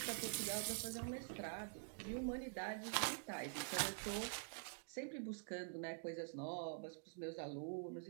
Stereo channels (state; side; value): silent; left; digital silence